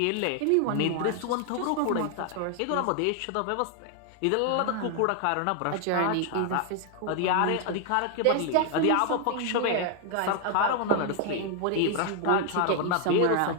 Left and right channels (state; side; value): different; both; correlation 0.00